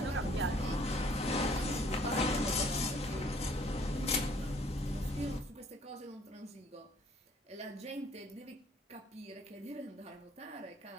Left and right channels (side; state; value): both; normal; correlation 0.59